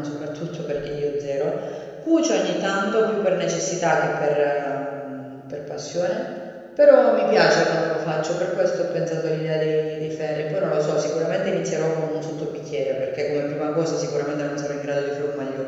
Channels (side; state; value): both; identical; correlation 1.00